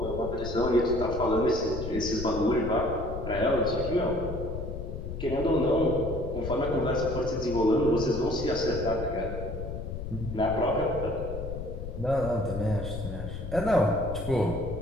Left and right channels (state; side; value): noise; left; rumble, 7 dB below the sound